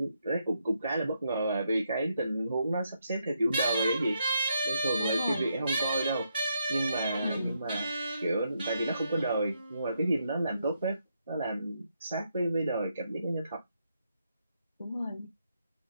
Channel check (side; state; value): both; inverted; correlation -0.79